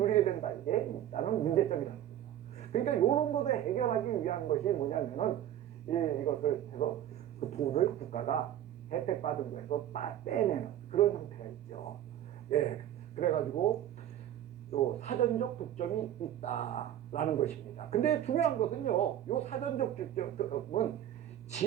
된다. 이게 있다는 문제점이라는 거죠. 그러니까 이런 것을 해결하기 위한 것이 뭐냐면은 이것을 해서 그 돈을 국가가 혜택받은 거에서 빼내는 그런 형태가 있죠. 그래가지고 요 사전적 독점이 있다라는 것입니다. 근데 중요한 것은요, 요 사전적 독점은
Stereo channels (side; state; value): left; quieter; 11.5 dB